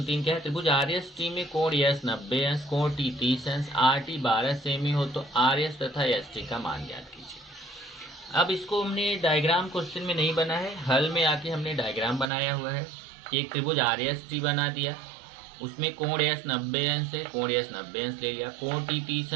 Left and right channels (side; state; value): left; drops out; at 12.3 s